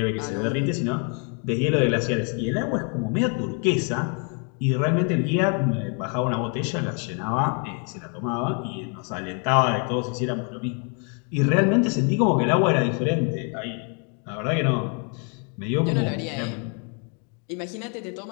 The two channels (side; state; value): right; quieter; 39.1 dB